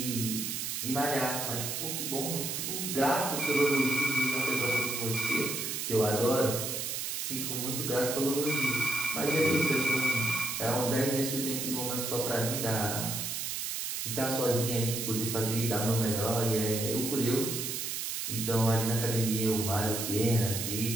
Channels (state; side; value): noise; right; hiss, 3 dB below the sound